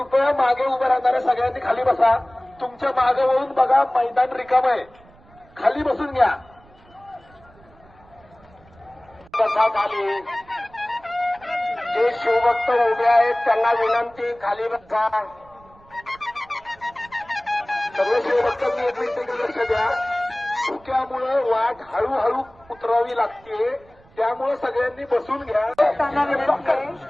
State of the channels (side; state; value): right; noise; rumble, 27 dB below the sound